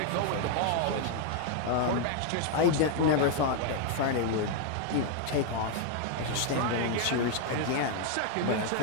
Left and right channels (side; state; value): both; different; correlation 0.00